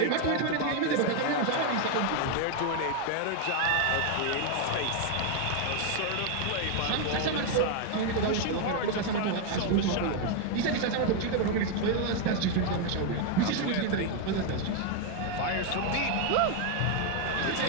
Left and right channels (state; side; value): different; both; correlation 0.01